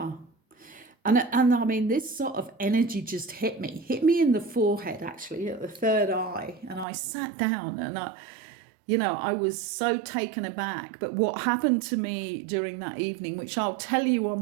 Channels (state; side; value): drops out; left; at 6.9 s